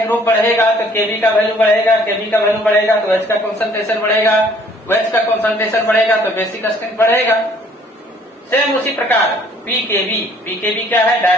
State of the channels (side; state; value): both; normal; correlation 0.59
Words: बढ़ेगा तो केवी का वैल्यू बढ़ेगा, केवी का वैल्यू बढ़ेगा तो OH का कंसंट्रेशन बढ़ेगा, OH का कंसंट्रेशन बढ़ेगा तो बेसिक स्ट्रेंथ बढ़ेगा। सेम उसी प्रकार पीकेवी, पीकेवी क्या है?